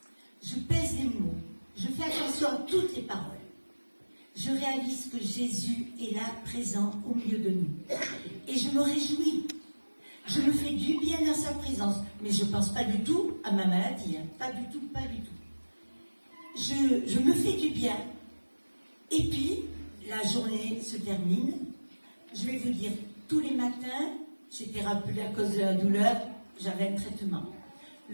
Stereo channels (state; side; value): inverted; both; correlation -1.00